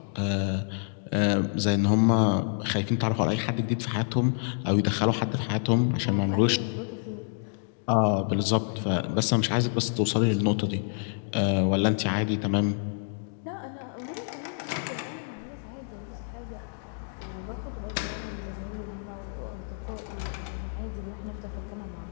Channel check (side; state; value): right; silent; digital silence